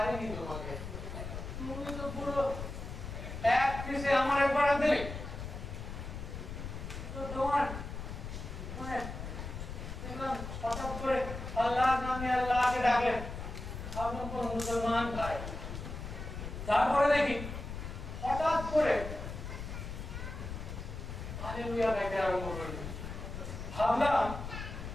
তোমাকে। তুমি তো পুরো এক পিসে আমার একবার দিলে। তো তোমার মানে হঠাৎ করে আল্লাহর নামে আল্লাহকে ডাকলেন, ভাবলাম কোন মুসলমান ভাই। তারপরে দেখি হঠাৎ করে হালেলুয়া গাইতে আরম্ভ করলেন। ভাবলাম,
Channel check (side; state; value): left; noise; rumble, 8 dB below the sound